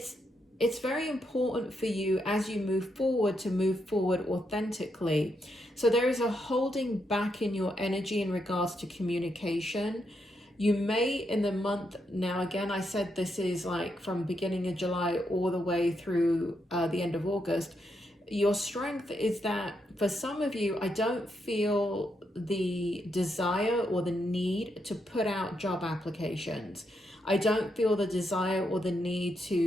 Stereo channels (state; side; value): normal; both; correlation 0.81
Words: very important for you as you move forward to move forward authentically. So there is a holding back in your energy in regards to communication. You may in the month, now again, I said this is like from beginning of July all the way through the end of August. Your strength is that for some of you, I don't feel the desire or the need to put out job applications. I don't feel the desire or the need